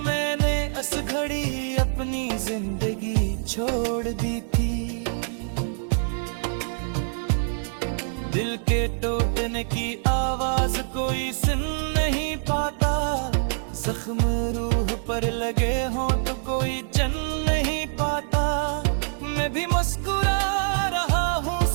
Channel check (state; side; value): silent; left; digital silence